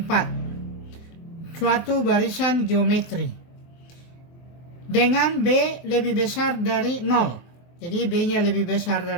Suatu barisan geometri. Dengan B lebih besar dari 0. Jadi B-nya lebih besar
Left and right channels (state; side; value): late; right; 23 ms